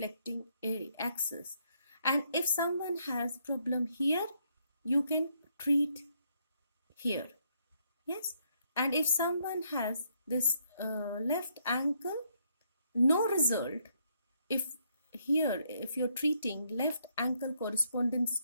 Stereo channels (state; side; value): inverted; both; correlation -0.73